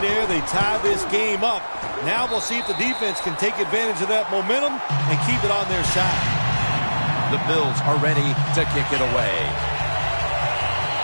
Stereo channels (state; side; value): inverted; both; correlation -1.00